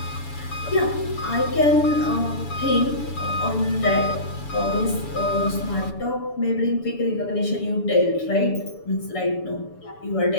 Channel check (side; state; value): right; late; 7.0 ms